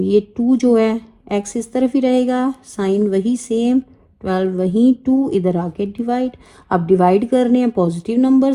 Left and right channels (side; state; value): both; identical; correlation 1.00